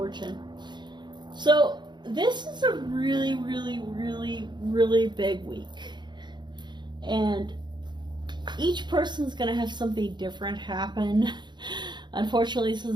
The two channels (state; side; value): late; left; 0.22 ms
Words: So this is a really, really, really, really big week. And each person's going to have something different happen. Unfortunately, this